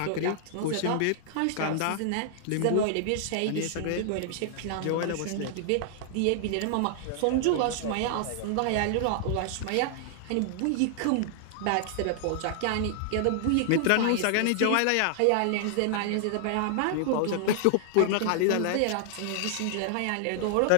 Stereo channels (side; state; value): both; different; correlation -0.01